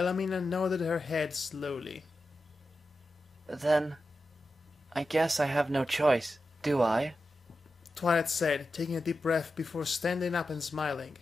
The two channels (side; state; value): both; normal; correlation 0.91